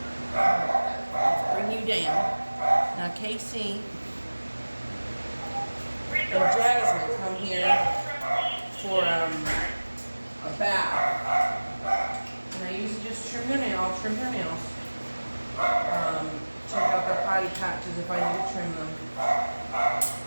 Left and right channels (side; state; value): both; inverted; correlation -1.00